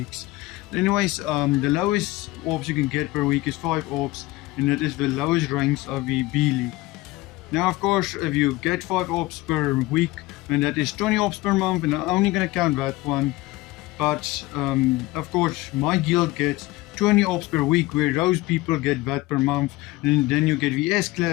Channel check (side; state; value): right; quieter; 19.2 dB